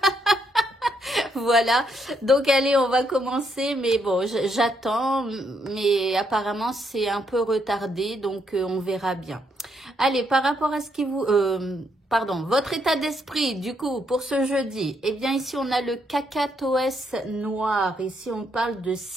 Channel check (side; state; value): both; normal; correlation 0.75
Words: Voilà, donc allez, on va commencer, mais bon, j'attends, mais apparemment c'est un peu retardé, donc on verra bien. Allez, par rapport à ce qui vous... pardon, votre état d'esprit, du coup, pour ce jeudi, eh bien ici on a le cacatoès noir, ici on parle de